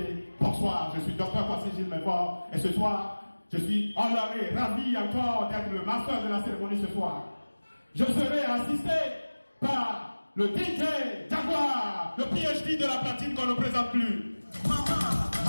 bonsoir, je suis Dr Kwasi Gilles Menfort et ce soir, je suis honoré, ravi encore d'être le master de la cérémonie ce soir. Je serai assisté par le DJ Jaguar, le PhD de la platine qu'on ne présente plus. Maman,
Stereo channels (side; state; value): both; inverted; correlation -1.00